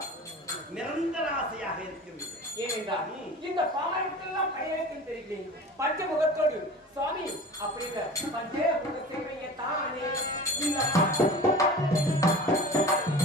நிரந்தர ஆசையாக இருக்கிறது. ஏனென்றால் இந்த பாமரத்துக்கெல்லாம் கையெழுத்தில் தெரிகிறேன் பஞ்சமுகத்தோடு சுவாமி. அப்படி இல்ல பஞ்சமுக சேவையை தானே இந்த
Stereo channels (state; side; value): normal; both; correlation 0.38